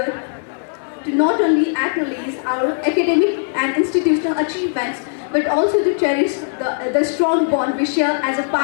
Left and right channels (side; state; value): right; silent; 58 dB below the other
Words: to not only acknowledge our academic and institutional achievements, but also to cherish the strong bond we share as a